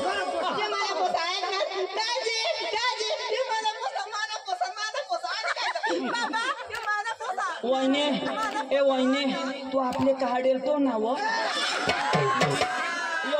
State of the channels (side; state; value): both; identical; correlation 1.00